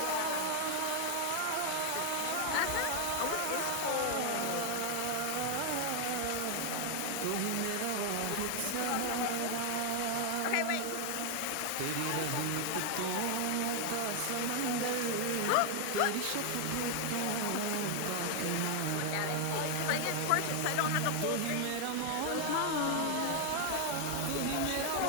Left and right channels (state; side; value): different; both; correlation 0.00